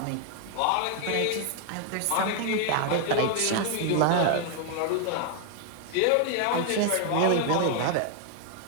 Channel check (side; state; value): both; different; correlation 0.00